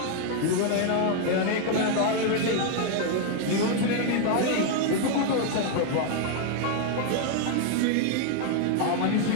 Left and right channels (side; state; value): both; different; correlation 0.00